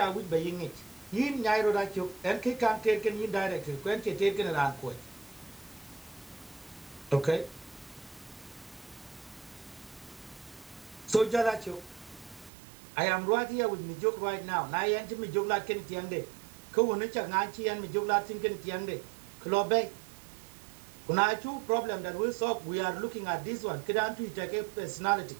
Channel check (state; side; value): drops out; left; at 12.5 s